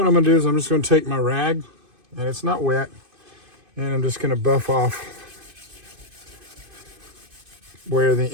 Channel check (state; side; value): late; left; 2.5 ms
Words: I'm going to do is I'm just going to take my rag, and it's not wet, and I'm just going to buff off where the